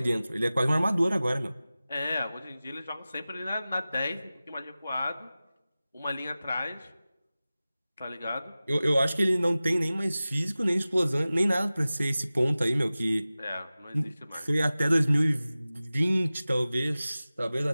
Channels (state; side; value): inverted; both; correlation -0.97